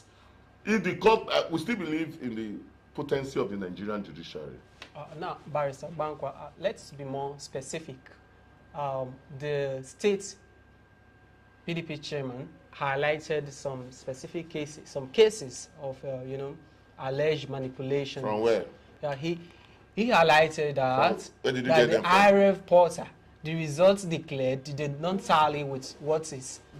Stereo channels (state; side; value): identical; both; correlation 1.00